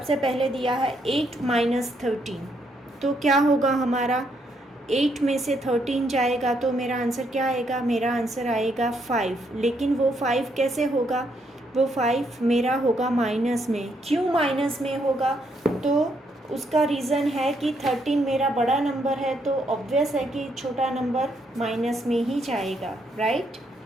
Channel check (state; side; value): normal; both; correlation 0.74